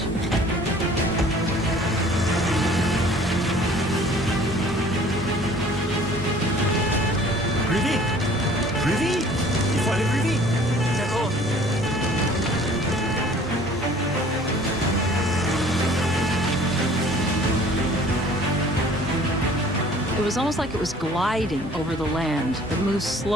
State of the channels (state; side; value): normal; both; correlation 0.51